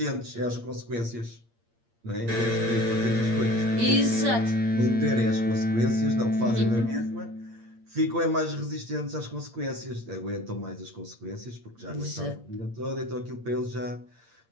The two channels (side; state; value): left; late; 8.6 ms